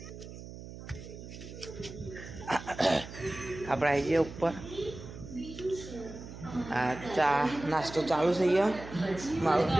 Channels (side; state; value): right; noise; hum, 13 dB below the sound